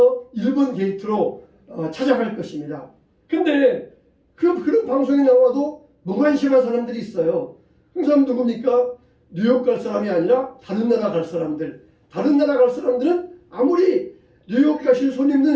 1번 게이트로 찾아갈 것입니다. 근데 그런 방송이 나와도 무관심한 사람들이 있어요. 그 사람 누굽니까? 뉴욕 갈 사람이 아니라 다른 나라 갈 사람들. 다른 나라 갈 사람들은 아무리 뉴욕 가실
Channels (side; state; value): both; identical; correlation 1.00